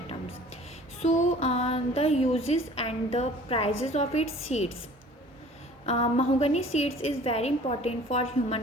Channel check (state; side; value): normal; both; correlation 0.48